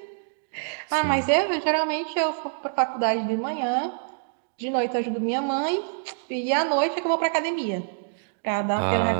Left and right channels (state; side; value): silent; left; digital silence